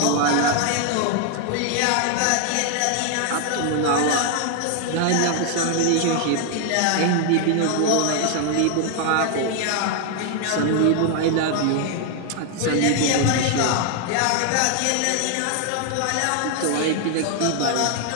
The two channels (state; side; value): different; both; correlation 0.00